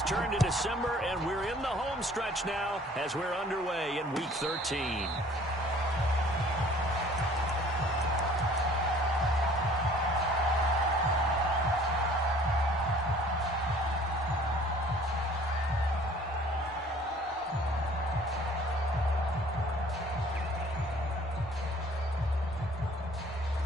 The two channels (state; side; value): normal; both; correlation 0.53